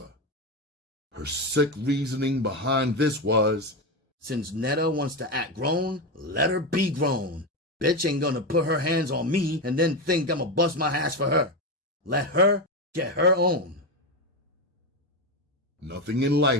Her sick reasoning behind this was, since Netta wants to act grown, let her be grown. Bitch ain't gonna put her hands on me and then think I'ma bust my ass for her. Let her get her own. Nothing in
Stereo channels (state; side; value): normal; both; correlation 0.14